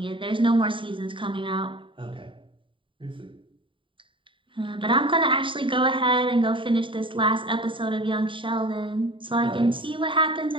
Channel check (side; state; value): left; late; 0.25 ms